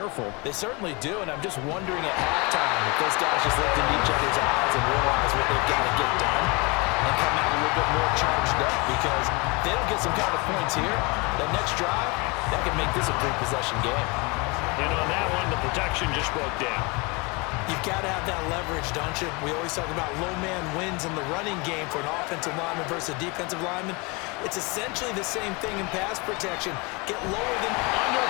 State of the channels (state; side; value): quieter; right; 28.0 dB